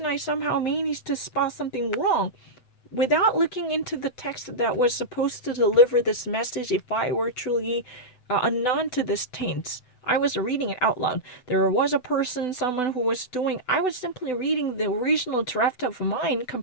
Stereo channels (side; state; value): right; late; 7.9 ms